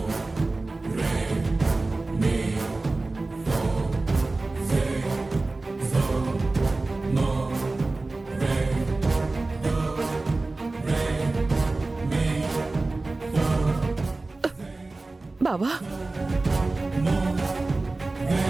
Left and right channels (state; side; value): quieter; left; 3.3 dB